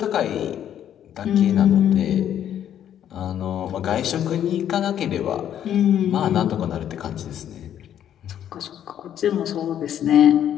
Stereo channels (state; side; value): quieter; right; 10.2 dB